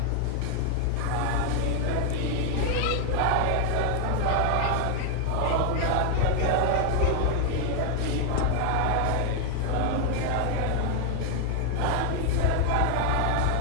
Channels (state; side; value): different; both; correlation 0.00